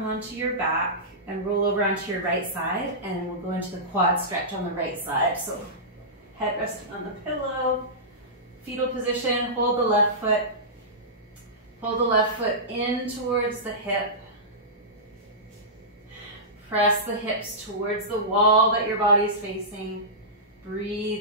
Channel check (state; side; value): normal; both; correlation -0.17